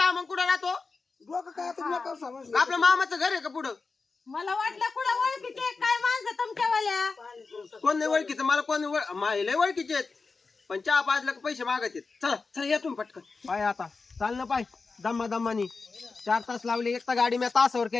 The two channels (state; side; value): quieter; right; 4.3 dB